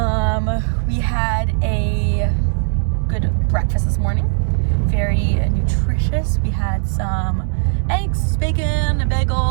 We had a good breakfast this morning, very nutritious. We had some eggs, bacon, a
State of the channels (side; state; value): left; silent; digital silence